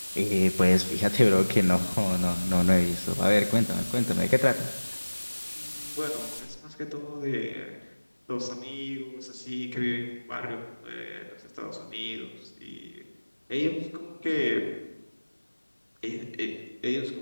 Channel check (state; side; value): inverted; both; correlation -1.00